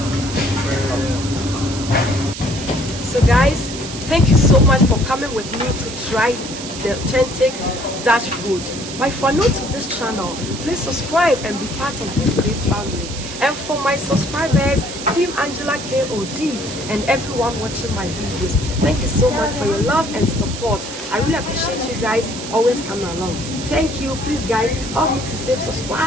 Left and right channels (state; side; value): noise; right; hiss, 10 dB below the sound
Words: So guys, thank you so much for coming with me to try the authentic Dutch food. But if you are new to this channel, please subscribe and be part of this great family. And for my subscribers, Team Angela KOD, and everyone watching my videos, thank you so much for your love and support. I really appreciate you guys always coming along. Thank you. Please guys, help me to say